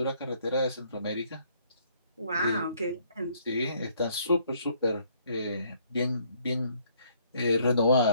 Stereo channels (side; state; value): both; inverted; correlation -0.65